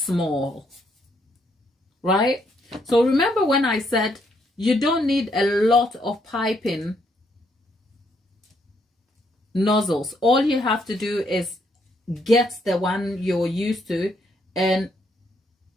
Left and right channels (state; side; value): normal; both; correlation 0.73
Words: Right? So remember when I said you don't need a lot of piping nozzles. All you have to do is get the one you're used to and